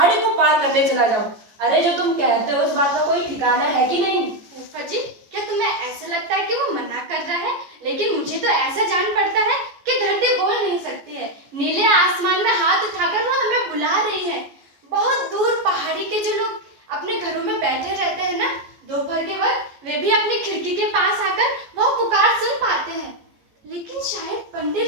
को पार करने चला जाओ। अरे जो तुम कहते हो उस बात का कोई ठिकाना है कि नहीं? फूफा जी, क्या तुम्हें ऐसा लगता है कि वो मना कर रहा है? लेकिन मुझे तो ऐसा जान पड़ता है कि धरती बोल नहीं सकती है। नीले आसमान में हाथ उठाकर वो हमें बुला रही है। बहुत दूर पहाड़ी के जो लोग अपने घरों में बैठे रहते हैं ना, दोपहर के वक्त, वे भी अपनी खिड़की के पास आकर वो पुकार सुन पाते हैं। लेकिन शायद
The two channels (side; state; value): left; late; 14 ms